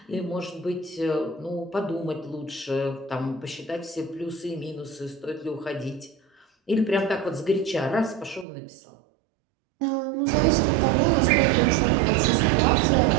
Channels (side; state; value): left; drops out; at 8.5 s